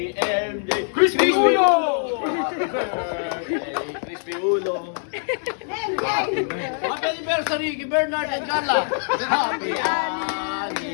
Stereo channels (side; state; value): right; silent; digital silence